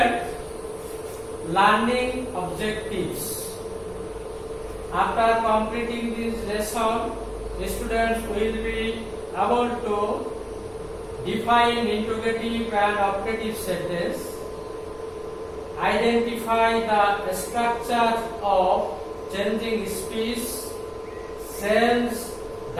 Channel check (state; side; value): identical; both; correlation 1.00